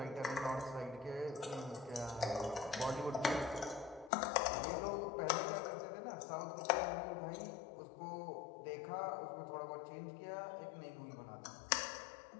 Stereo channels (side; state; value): right; drops out; at 4.1 s